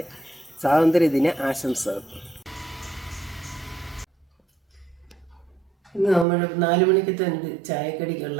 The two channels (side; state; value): left; drops out; at 6.2 s